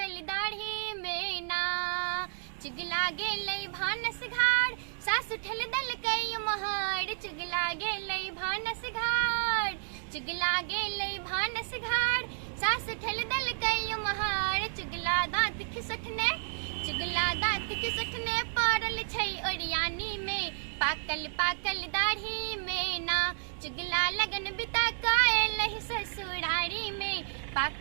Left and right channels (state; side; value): silent; left; digital silence